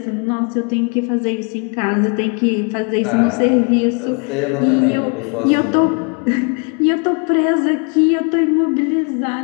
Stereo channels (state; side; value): quieter; right; 35.3 dB